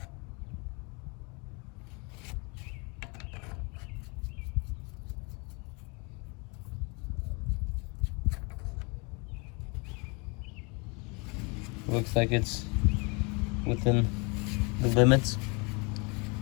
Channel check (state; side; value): quieter; right; 31.0 dB